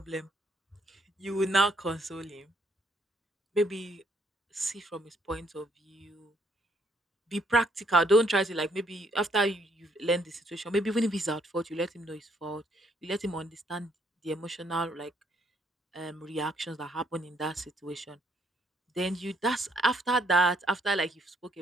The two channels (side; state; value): both; normal; correlation 0.69